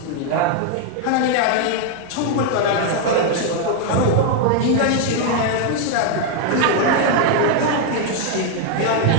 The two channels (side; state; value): both; different; correlation 0.01